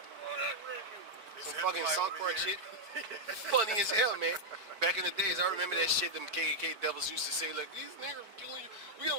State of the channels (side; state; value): left; late; 4.6 ms